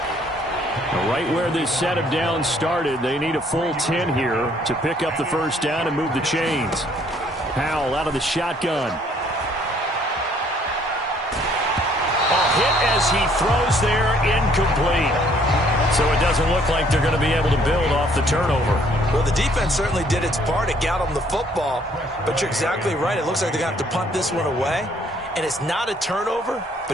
Right where this set of downs started, they need a full 10 here to pick up the first down and move the chains. Howell out of the shotgun. A hit as he throws there, incomplete. So it doesn't look like they're going to be able to build off the turnover. Well, the defense certainly did its part. It got them the football. But you're exactly right. It looks like they're going to have to punt this one away. And it's not a turnover,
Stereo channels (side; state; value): both; normal; correlation 0.63